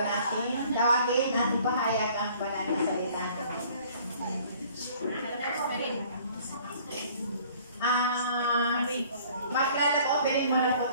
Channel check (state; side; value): inverted; both; correlation -0.55